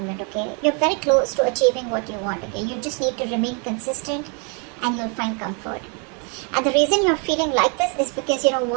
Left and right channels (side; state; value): left; quieter; 36.4 dB